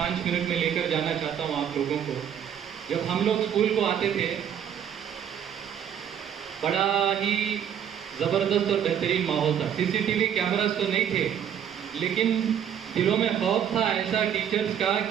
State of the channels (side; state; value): left; quieter; 9.1 dB